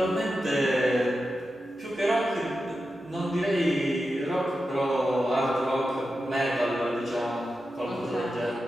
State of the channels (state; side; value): normal; both; correlation 0.90